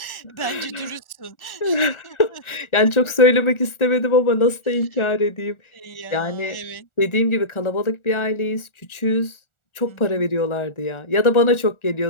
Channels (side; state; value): right; late; 1.4 ms